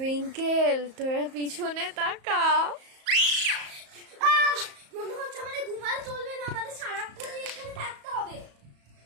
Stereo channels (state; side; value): late; left; 34 ms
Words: তোরা পিছনে তাকা। মনে হচ্ছে আমাদের ঘুমালে চলবে না, আমাদের সারাক্ষণ এখানে থাকতে হবে।